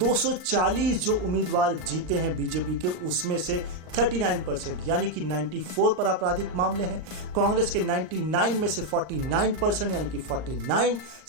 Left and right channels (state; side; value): late; left; 39 ms